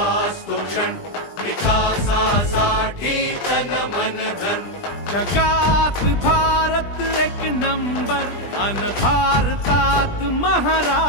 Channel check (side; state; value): right; late; 20 ms